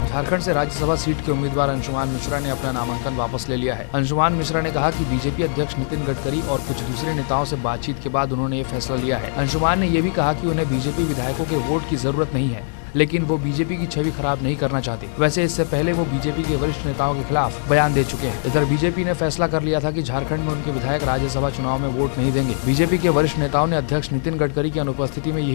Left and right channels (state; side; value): silent; right; 61 dB below the other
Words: झारखंड से राज्यसभा सीट के उम्मीदवार अंशुमान मिश्रा ने अपना नामांकन वापस ले लिया है। अंशुमान मिश्रा ने कहा कि बीजेपी अध्यक्ष नितिन गडकरी और कुछ दूसरे नेताओं से बातचीत के बाद उन्होंने ये फैसला लिया है। अंशुमान ने ये भी कहा कि उन्हें बीजेपी विधायकों के वोट की जरूरत नहीं है, लेकिन वो बीजेपी की छवि खराब नहीं करना चाहते। वैसे इससे पहले वो बीजेपी के वरिष्ठ नेताओं के खिलाफ बयान दे चुके हैं। इधर बीजेपी ने फैसला कर लिया था कि झारखंड में उनके विधायक राज्यसभा चुनाव में वोट नहीं देंगे। बीजेपी के वरिष्ठ नेताओं ने अध्यक्ष नितिन गडकरी की अनुपस्थिति में